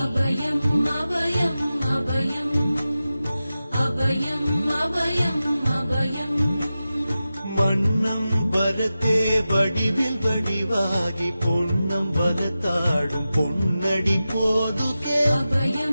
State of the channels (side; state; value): both; inverted; correlation -0.94